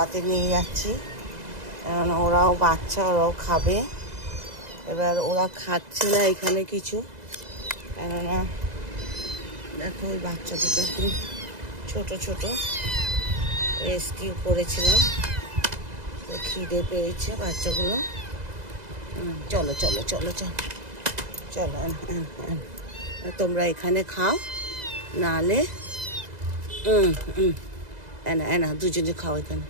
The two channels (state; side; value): late; left; 2.0 ms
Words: নিয়ে যাচ্ছি, কারণ ওরাও বাচ্চা, ওরাও খাবে। এবার ওরা খাচ্ছে না এখানে কিছু, কেননা দেখো ওই বাচ্চা দুটো একদম ছোটো ছোটো, রেস্কিউ করেছিলাম, তো খিদে পেয়েছে বাচ্চাগুলো। চলো চলো চলো চলো চলো, তোমরা এখানে খাও, নাহলে এনা এনা দুজনে খাও এখানে,